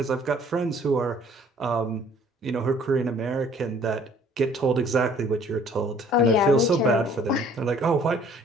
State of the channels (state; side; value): normal; both; correlation 0.56